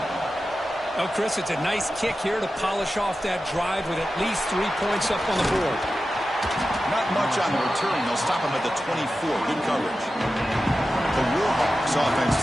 Oh, Chris, it's a nice kick here to polish off that drive with at least 3 points up on the board. Not much on the return. They'll stop him at the 24. Good coverage. The Warhawks offense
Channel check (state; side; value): normal; both; correlation 0.93